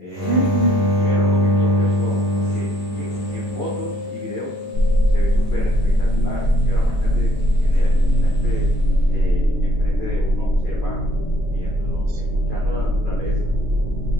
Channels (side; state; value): both; normal; correlation 0.64